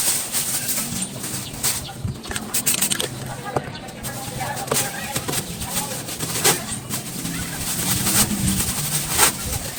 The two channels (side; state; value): both; identical; correlation 1.00